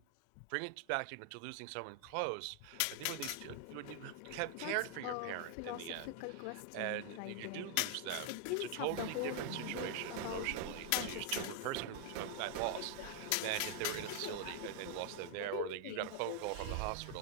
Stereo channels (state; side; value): different; both; correlation 0.00